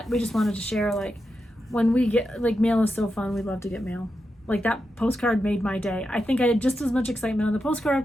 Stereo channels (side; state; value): both; normal; correlation 0.88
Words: we just wanted to share, like, when we get, like, mail is so fun. We love to get mail. Like, that postcard made my day. I think I had just as much excitement on the postcard